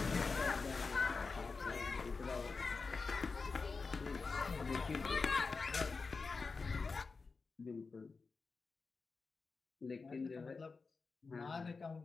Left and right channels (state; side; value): quieter; right; 4.4 dB